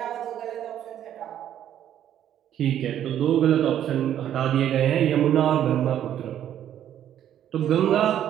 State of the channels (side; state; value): left; quieter; 10.7 dB